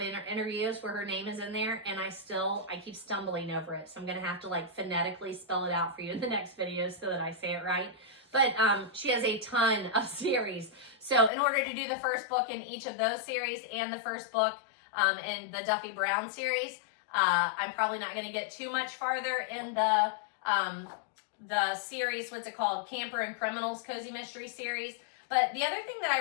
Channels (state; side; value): drops out; right; at 11.3 s